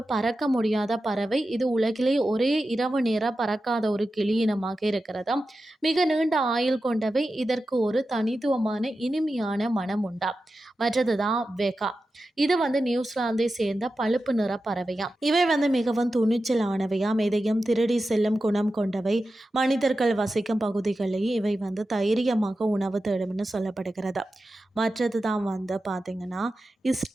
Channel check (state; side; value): normal; both; correlation 0.92